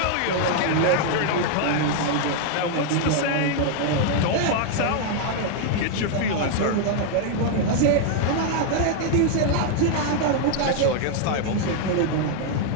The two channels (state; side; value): different; both; correlation 0.00